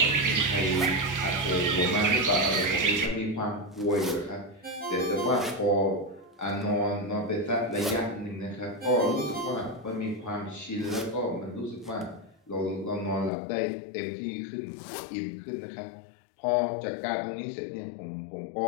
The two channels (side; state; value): right; drops out; at 13.3 s